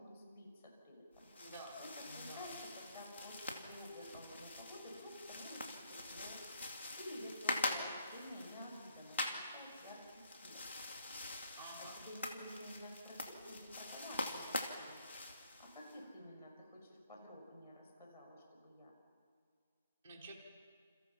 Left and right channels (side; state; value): both; inverted; correlation -0.67